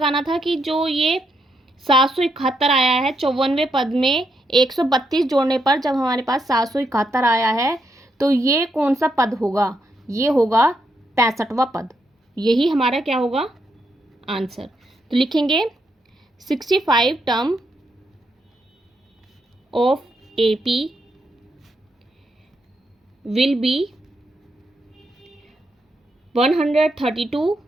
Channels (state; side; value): normal; both; correlation 0.80